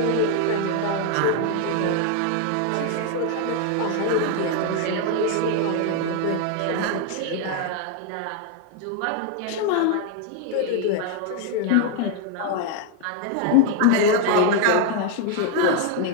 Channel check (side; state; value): both; different; correlation 0.01